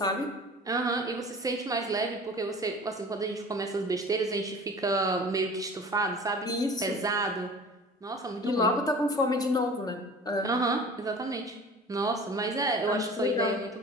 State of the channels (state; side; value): normal; both; correlation 0.42